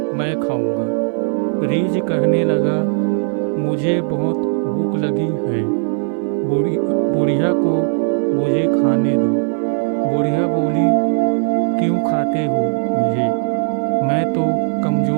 मैं खाऊंगा। रीछ कहने लगा, मुझे बहुत भूख लगी है, बुढ़िया को मुझे खाने दो। बुढ़िया बोली, क्यों खाते हो मुझे? मैं तो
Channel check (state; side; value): silent; left; digital silence